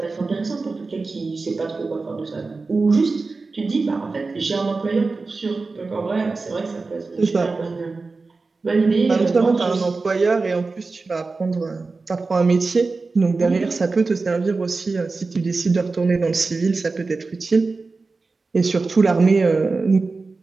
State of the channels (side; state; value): left; quieter; 3.9 dB